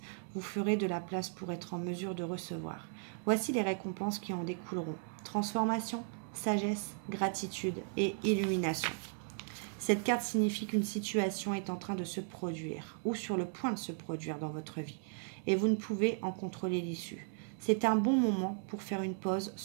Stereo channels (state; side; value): silent; left; 54 dB below the other